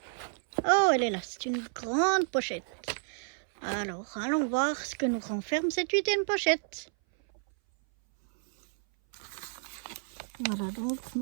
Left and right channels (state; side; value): silent; left; 57 dB below the other